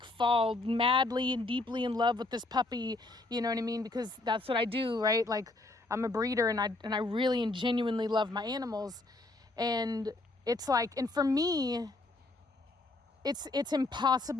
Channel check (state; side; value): quieter; right; 3.0 dB